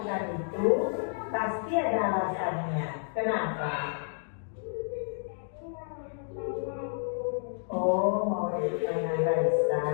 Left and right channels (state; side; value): silent; right; digital silence